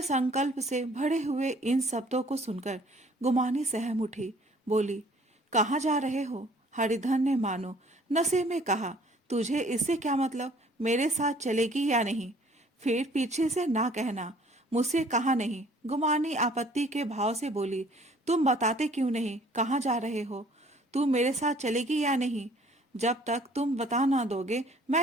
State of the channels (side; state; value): both; normal; correlation 0.56